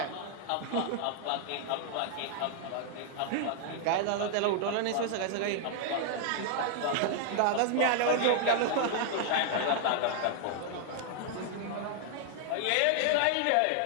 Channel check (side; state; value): both; different; correlation 0.00